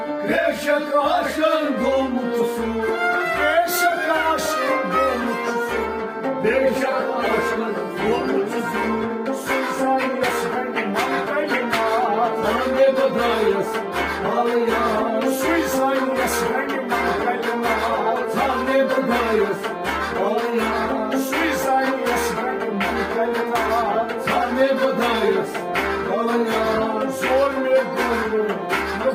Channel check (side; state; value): both; identical; correlation 1.00